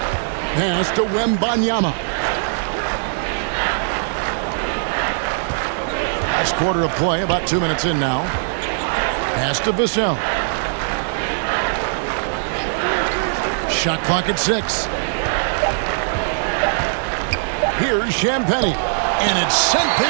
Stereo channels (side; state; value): left; silent; digital silence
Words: Pass to Wembanyama. Last quarter of play, about 2 minutes in now. Pass to Vassell. Shot clock at 6. Here's Champagny. And it's sent